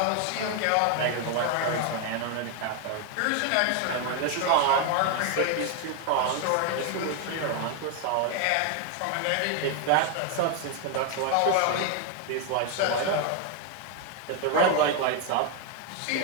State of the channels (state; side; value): different; both; correlation 0.01